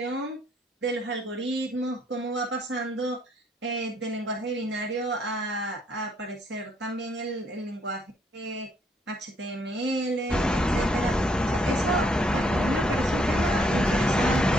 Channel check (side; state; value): both; normal; correlation 0.69